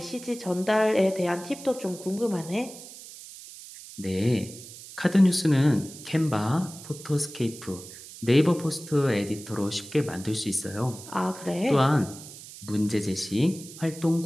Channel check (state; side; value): noise; right; hiss, 15 dB below the sound